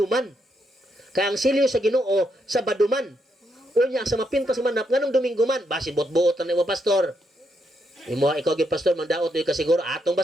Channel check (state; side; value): normal; both; correlation 0.79